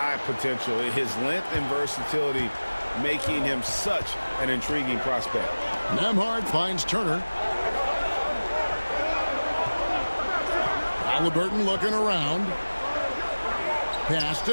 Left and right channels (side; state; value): both; inverted; correlation -1.00